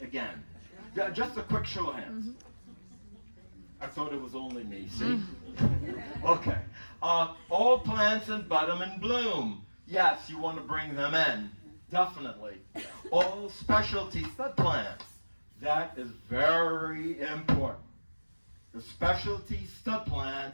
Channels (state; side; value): inverted; both; correlation -1.00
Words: again? Yeah, just a quick show of hands. I thought it was only me, see? Okay. All plants in bottom and bloom. Yes, you want to bring them in. Definitely. All specialty stud plants. That is very important. The specialty stud